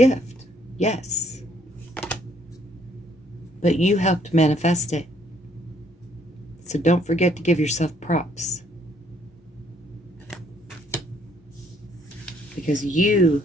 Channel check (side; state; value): both; normal; correlation 0.66